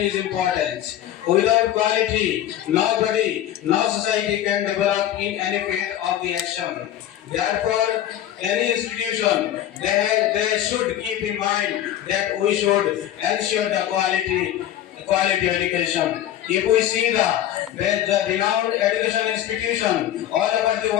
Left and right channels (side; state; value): right; quieter; 11.9 dB